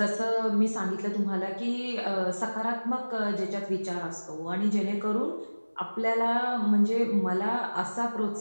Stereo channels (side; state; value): both; inverted; correlation -1.00